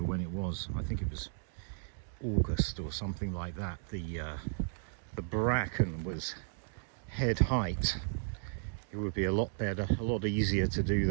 when it was, I think it was August or something like that, the bracken was head height. It would be a lot better, a lot easier to do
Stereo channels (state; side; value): silent; left; digital silence